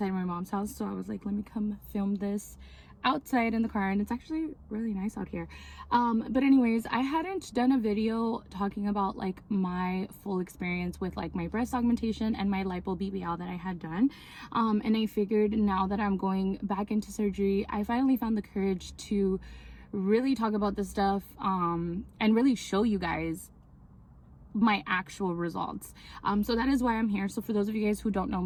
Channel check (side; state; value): both; identical; correlation 1.00